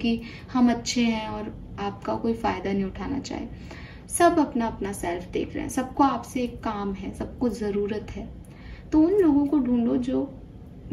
हम अच्छे हैं और आपका कोई फायदा नहीं उठाना चाहे। सब अपना अपना सेल्फ देख रहे हैं, सबको आपसे एक काम है, सबको जरूरत है। तो उन लोगों को ढूंढो जो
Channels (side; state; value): both; identical; correlation 1.00